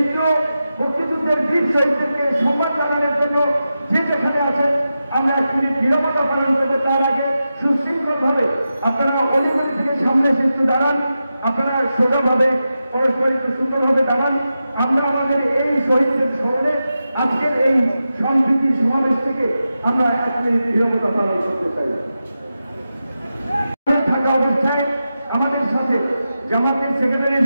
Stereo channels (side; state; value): both; inverted; correlation -0.91